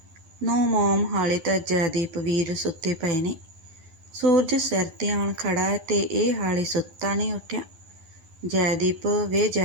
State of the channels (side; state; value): left; late; 12 ms